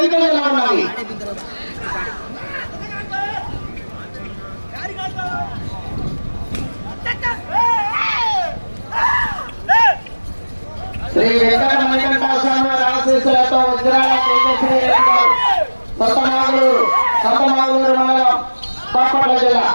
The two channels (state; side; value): inverted; both; correlation -1.00